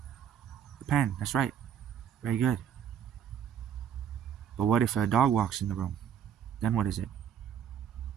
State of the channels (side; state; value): left; quieter; 9.0 dB